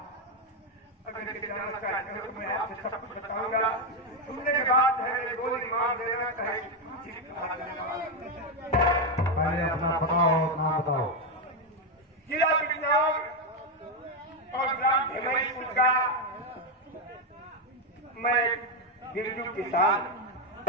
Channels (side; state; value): both; normal; correlation 0.05